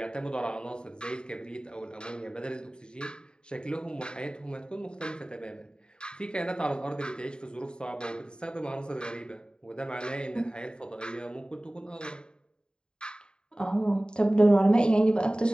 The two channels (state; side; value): late; right; 0.049 ms